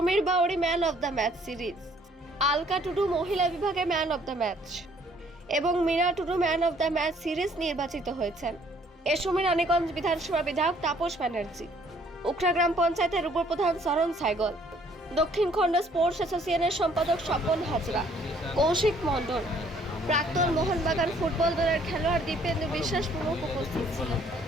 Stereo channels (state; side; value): normal; both; correlation 0.61